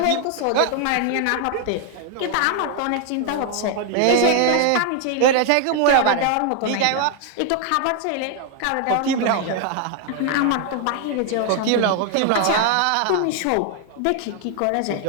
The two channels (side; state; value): both; different; correlation 0.00